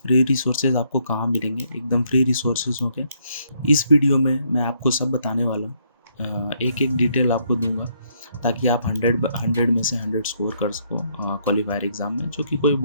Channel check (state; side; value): inverted; both; correlation -0.71